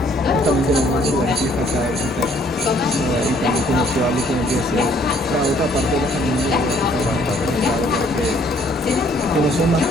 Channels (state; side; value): normal; both; correlation 0.63